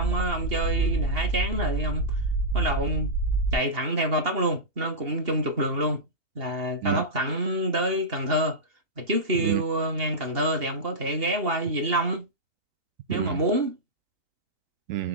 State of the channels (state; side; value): late; left; 2.8 ms